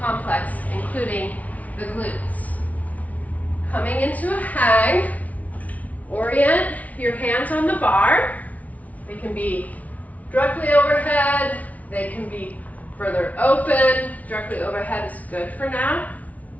complex, including the glutes. Coming into a hang, orient your hands on the bar. They can be directly overhead, they can be further open. Directly overhead is good for now.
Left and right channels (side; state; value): right; late; 0.071 ms